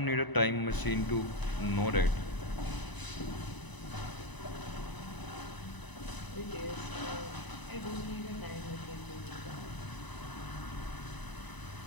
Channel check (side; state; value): right; late; 1.0 ms